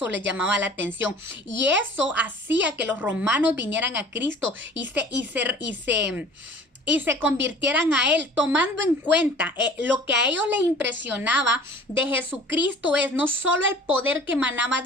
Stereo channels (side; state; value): both; normal; correlation 0.46